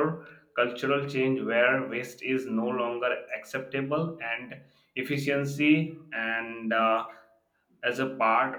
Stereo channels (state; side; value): identical; both; correlation 1.00